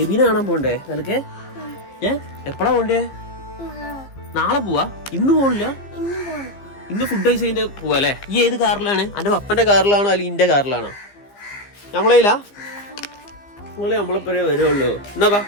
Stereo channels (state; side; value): late; right; 15 ms